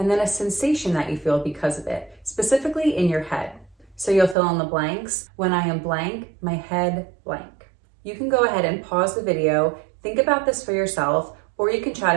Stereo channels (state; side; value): drops out; left; at 4.4 s